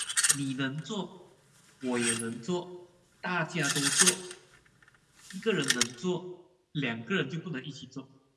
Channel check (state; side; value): identical; both; correlation 1.00